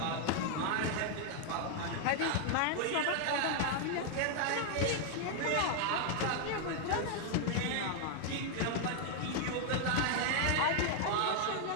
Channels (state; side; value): different; both; correlation 0.00